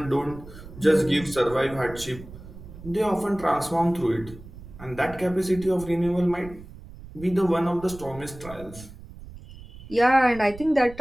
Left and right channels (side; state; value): right; noise; rumble, 16 dB below the sound